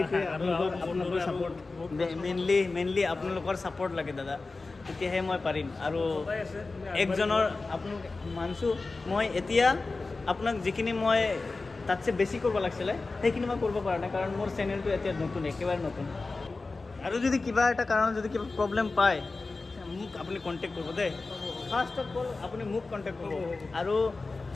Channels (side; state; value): right; quieter; 3.7 dB